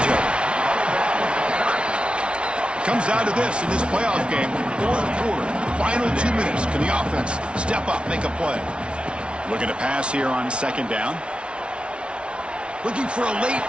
of it. Comes down to this in this playoff game. Fourth quarter, final 2 minutes. Can the offense step up, make a play? Looking to pass here on second down. Looking for a late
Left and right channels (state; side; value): late; left; 0.058 ms